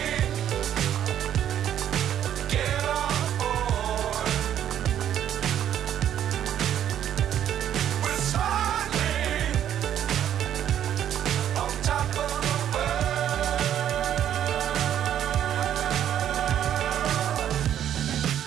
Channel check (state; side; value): quieter; left; 10.4 dB